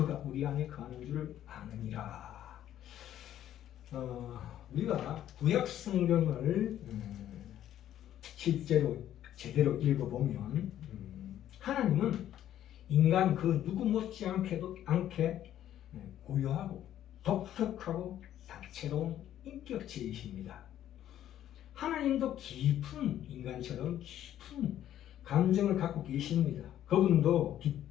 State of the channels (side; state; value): right; quieter; 11.6 dB